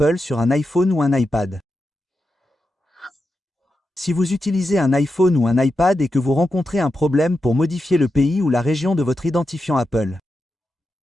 sur un iPhone ou un iPad. Si vous utilisez un iPhone ou un iPad et que vous rencontrez un problème pour modifier le pays ou la région de votre identifiant Apple,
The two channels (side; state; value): both; normal; correlation 0.88